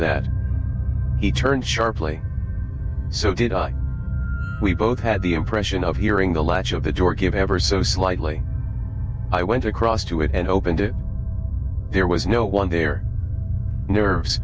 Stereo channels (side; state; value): both; identical; correlation 1.00